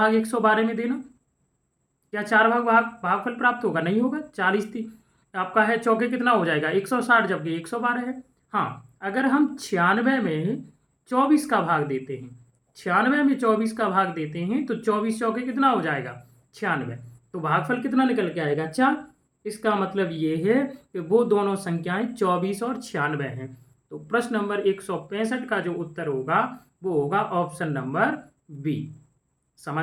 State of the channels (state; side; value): identical; both; correlation 1.00